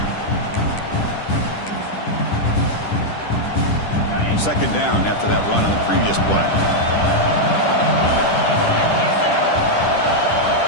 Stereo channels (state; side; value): late; right; 10 ms